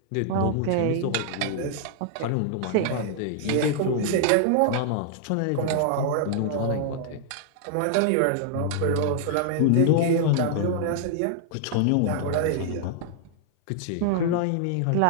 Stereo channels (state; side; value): different; both; correlation -0.01